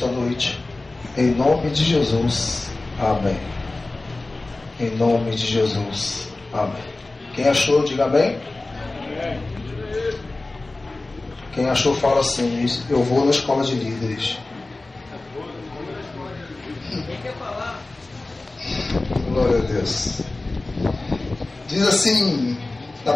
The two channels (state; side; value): quieter; right; 3.1 dB